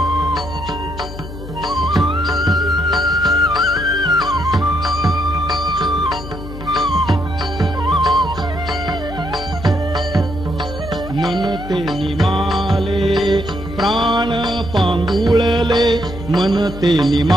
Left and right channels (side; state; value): left; noise; hum, 11 dB below the sound